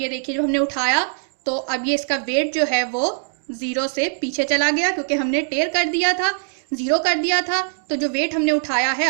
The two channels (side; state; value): left; silent; digital silence